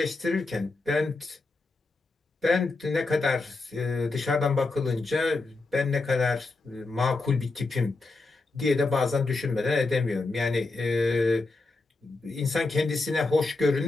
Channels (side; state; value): right; quieter; 3.4 dB